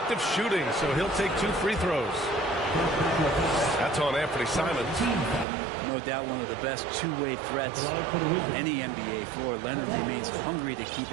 of shooting, so he'll take 2 free throws. That's on Anthony Simons. No doubt one of the best two-way threats on any NBA floor. Leonard remains hungry to keep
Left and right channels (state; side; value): drops out; left; at 5.5 s